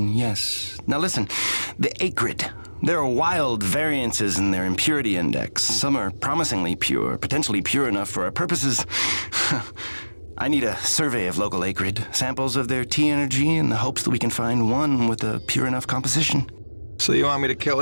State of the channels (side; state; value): both; inverted; correlation -1.00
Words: yes. Now listen, the acrid. There are wild variances in their impurity index. Some are promisingly pure, potentially pure enough for our purposes. I need a survey of local acrid, samples of their T-energy in the hopes that we can find one with a pure enough composition. So you want me to kill